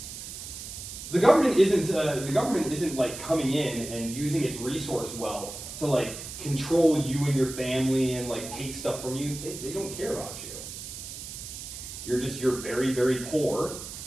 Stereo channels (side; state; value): right; noise; hiss, 10 dB below the sound